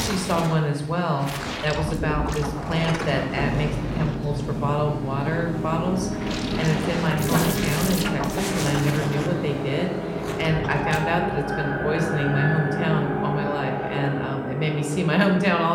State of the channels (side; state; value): both; identical; correlation 1.00